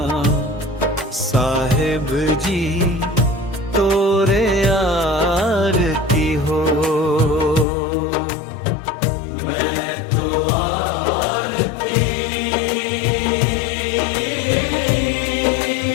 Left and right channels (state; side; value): drops out; right; at 7.7 s